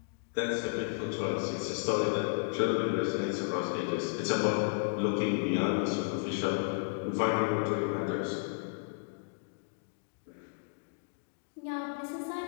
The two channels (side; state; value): right; silent; digital silence